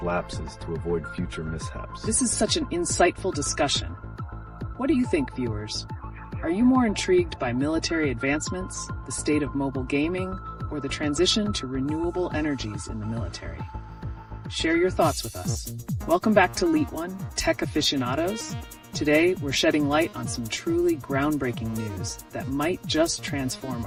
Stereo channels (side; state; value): both; identical; correlation 1.00